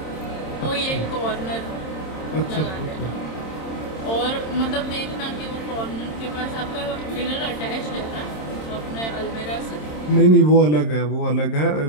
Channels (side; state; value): right; late; 26 ms